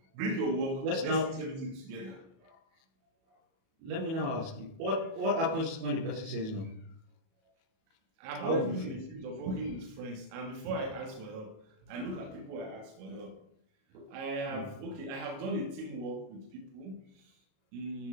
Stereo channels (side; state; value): left; late; 37 ms